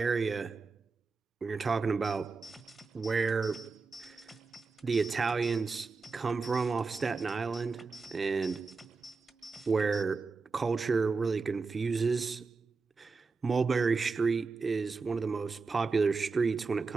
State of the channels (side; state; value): left; quieter; 4.4 dB